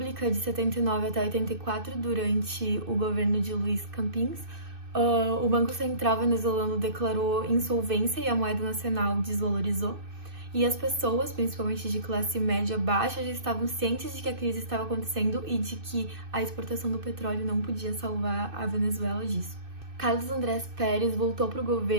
de 79 até 84, durante o governo de Luiz Campins, o Banco Central venezuelano declarou insolvência e a moeda nacional desvalorizou. E as pessoas, principalmente de classe média baixa, já estavam cientes de que a crise estava acontecendo e de que a exportação do petróleo não podia salvar a Venezuela disso. Carlos Andrés Pérez voltou para o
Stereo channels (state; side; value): late; left; 2.6 ms